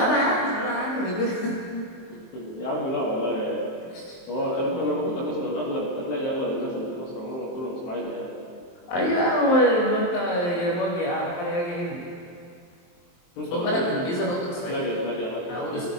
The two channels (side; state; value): right; late; 23 ms